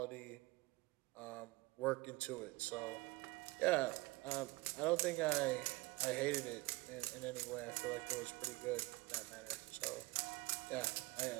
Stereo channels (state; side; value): quieter; left; 22.4 dB